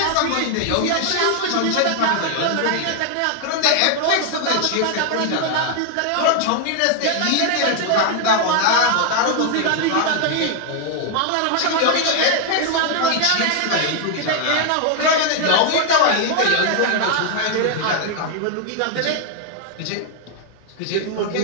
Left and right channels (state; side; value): different; both; correlation 0.00